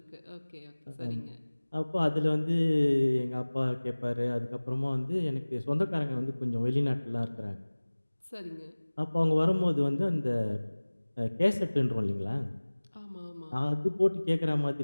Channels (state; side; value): inverted; both; correlation -1.00